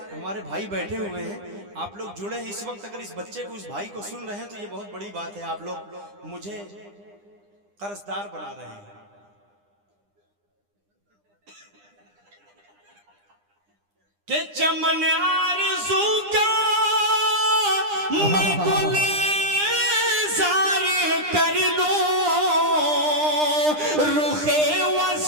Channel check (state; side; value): late; left; 9.9 ms